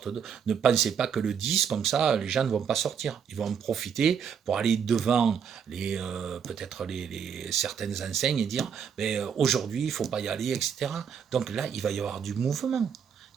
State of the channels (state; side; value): quieter; left; 7.3 dB